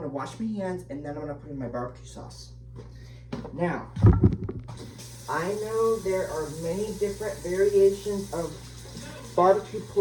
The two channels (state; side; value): identical; both; correlation 1.00